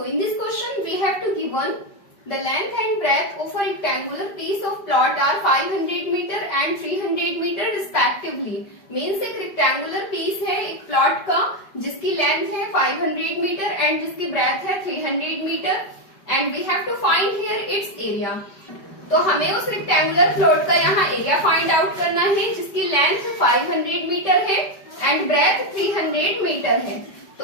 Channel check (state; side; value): late; right; 5.0 ms